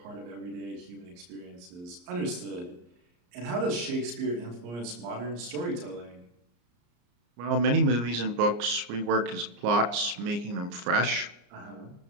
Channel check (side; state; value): left; late; 34 ms